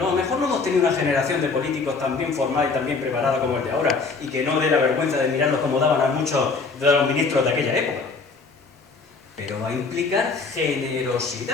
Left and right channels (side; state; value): right; quieter; 4.4 dB